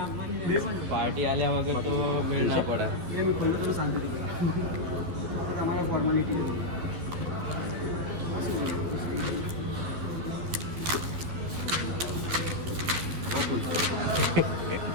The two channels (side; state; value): left; late; 12 ms